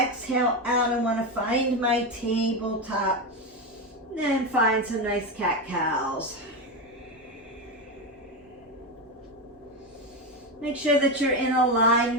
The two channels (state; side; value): normal; both; correlation 0.14